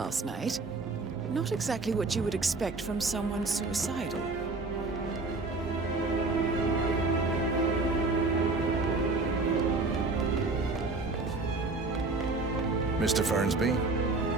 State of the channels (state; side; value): quieter; left; 3.5 dB